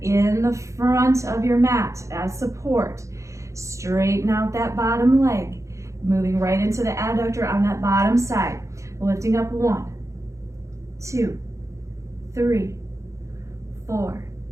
in the front of your mat as support. Straighten out that bottom leg, moving right into the adductor on that bottom side. Lifting up 1, 2, 3, 4,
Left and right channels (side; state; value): left; late; 0.15 ms